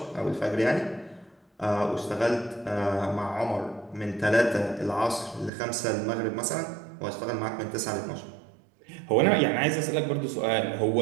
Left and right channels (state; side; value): drops out; left; at 5.5 s